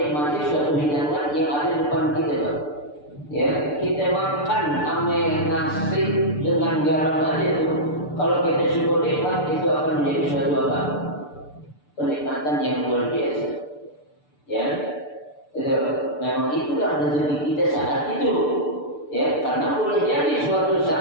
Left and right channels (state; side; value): late; right; 6.8 ms